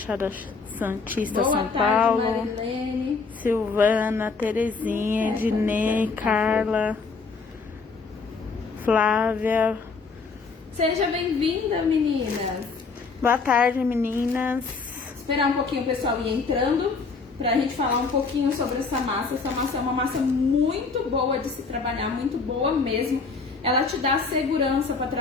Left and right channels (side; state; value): right; quieter; 4.6 dB